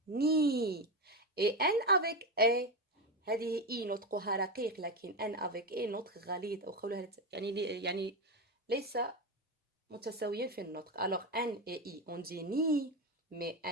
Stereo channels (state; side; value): normal; both; correlation 0.14